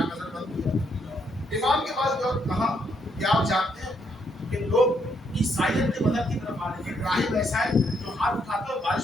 نظر بند کیا, امام کے پاس گئے, کہا کہ آپ جانتے ہیں کہ لوگ عیسائیت کے مذہب کی طرف آ رہے ہیں, راہب ایسا ہے جو ہاتھ اٹھاتا ہے اور بارش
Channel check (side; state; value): both; normal; correlation 0.74